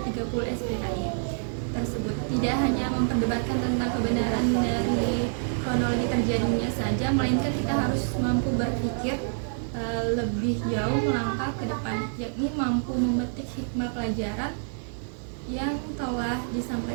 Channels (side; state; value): left; silent; 60 dB below the other